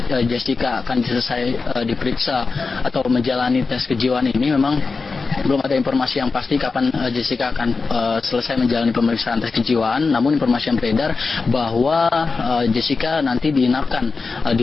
Jessica akan selesai diperiksa atau menjalani tes kejiwaan ini, memang belum ada informasi yang pasti kapan Jessica akan selesai menjalani pemeriksaan tes kejiwaan. Namun informasi yang beredar bahwa Jessica nanti diinapkan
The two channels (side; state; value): right; quieter; 4.3 dB